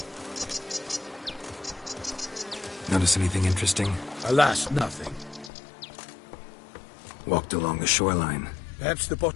Notice anything interesting? Alas, nothing. Walked along the shoreline. Perhaps the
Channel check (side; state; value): right; drops out; at 5.5 s